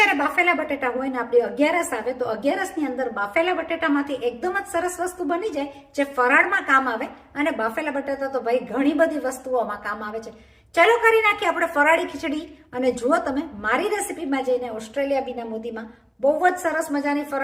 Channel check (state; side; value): identical; both; correlation 1.00